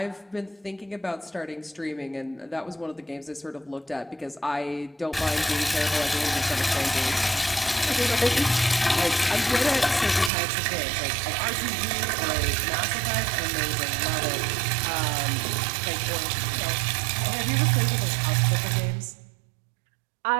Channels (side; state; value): left; drops out; at 10.3 s